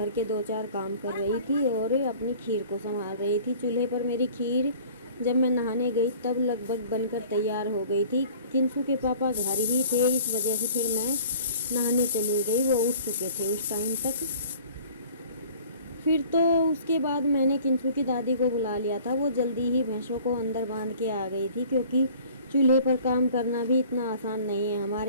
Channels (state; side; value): inverted; both; correlation -0.49